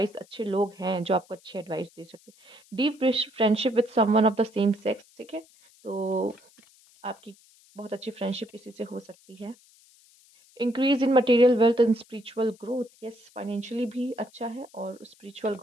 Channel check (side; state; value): left; noise; hiss, 28 dB below the sound